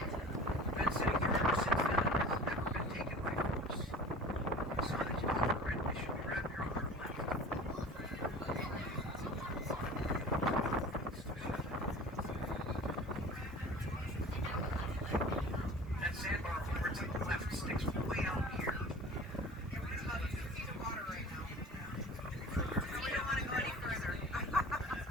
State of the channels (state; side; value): normal; both; correlation 0.41